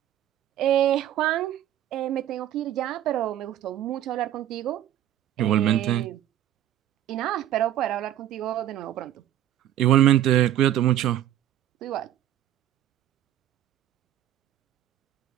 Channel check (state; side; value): quieter; left; 12.0 dB